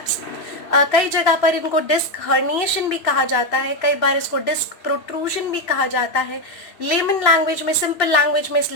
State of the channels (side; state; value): right; late; 3.0 ms